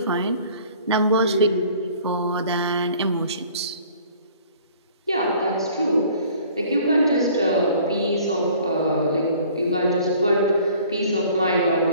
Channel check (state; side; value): inverted; both; correlation -0.52